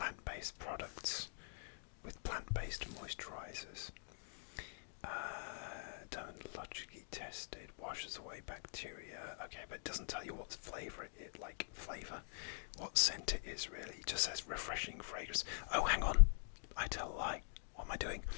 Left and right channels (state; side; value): silent; right; digital silence